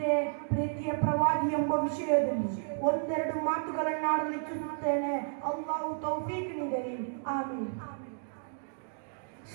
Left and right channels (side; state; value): left; silent; digital silence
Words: ಪ್ರೀತಿಯ ಪ್ರವಾದಿ ಎಂಬ ವಿಷಯದಲ್ಲಿ ಒಂದೆರಡು ಮಾತುಗಳನ್ನಾಡಲು ಇಚ್ಛಿಸುತ್ತೇನೆ. ಅಲ್ಲಾಹು ತೌಫೀಕ್ ನೀಡಲಿ, ಆಮೀನ್.